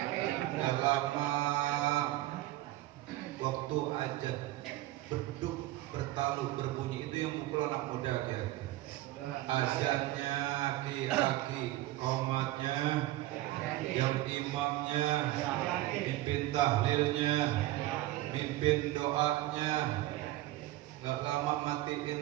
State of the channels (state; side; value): quieter; left; 16.5 dB